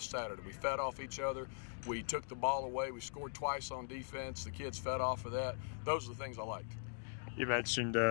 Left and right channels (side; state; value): right; silent; digital silence